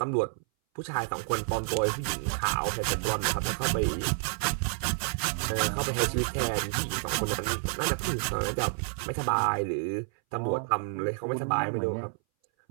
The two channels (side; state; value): left; silent; 58 dB below the other